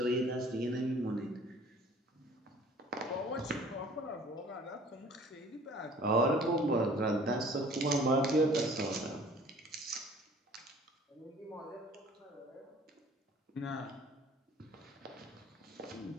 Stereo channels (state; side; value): normal; both; correlation 0.51